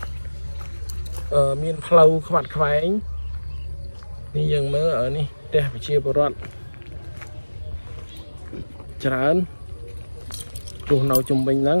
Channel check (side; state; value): both; inverted; correlation -1.00